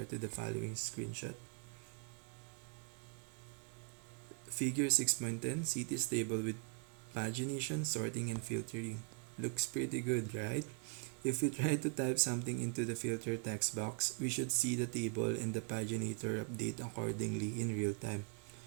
to the following screenshot. Figure 6.10 CTIS table with pagination, sorting, and filtering. Looks pretty good, right? If we try to type something into the filter text box, we should see the table and the paginator update accordingly in real time.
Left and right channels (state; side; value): quieter; left; 37.2 dB